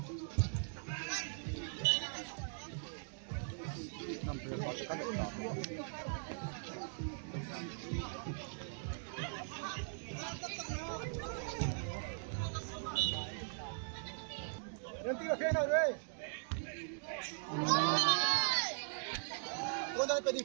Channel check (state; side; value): silent; left; digital silence